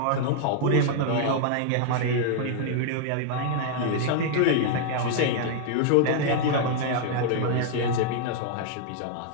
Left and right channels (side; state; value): both; different; correlation -0.01